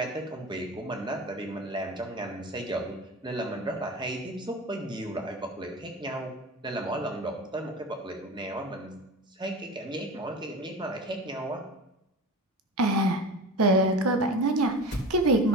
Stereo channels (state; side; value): normal; both; correlation 0.31